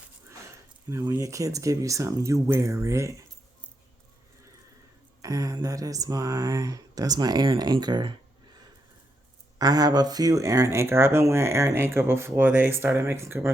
when your kids give you something, you wear it. And that's my Aaron Anchor. I have a few Aaron Anchor. I've been wearing Aaron Anchor before they started making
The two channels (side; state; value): both; normal; correlation 0.81